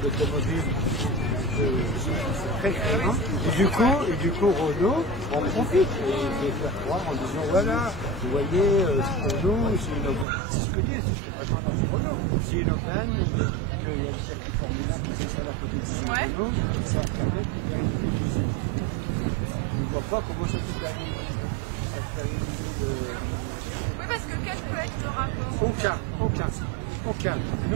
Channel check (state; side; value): drops out; left; at 10.2 s